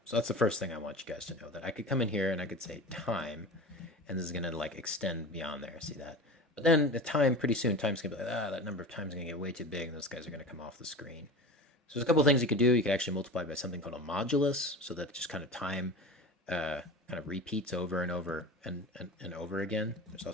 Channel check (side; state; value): both; normal; correlation 0.32